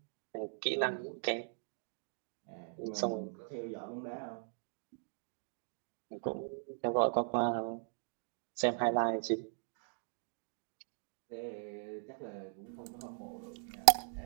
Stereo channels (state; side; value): silent; left; digital silence